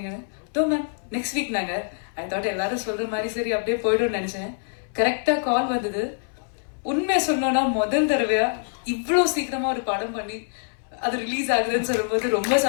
மேம் நெக்ஸ்ட் வீக் நாங்கள் ஐ தாட் எல்லாரும் சொல்கிற மாதிரி சரி அப்படியே போய்டும்னு நினச்சேன். கரெக்டாக கால் வந்தது. உண்மையை சொன்னோன்னா முதல் தடவையா இவ்வளோ சீக்கிரமாக ஒரு படம் பண்ணி அது ரிலீஸ் ஆகுதுன்னு சொல்லும்போது ரொம்ப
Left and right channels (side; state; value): right; silent; 62 dB below the other